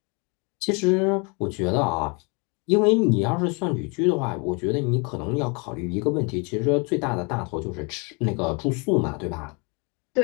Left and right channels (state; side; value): quieter; right; 32.3 dB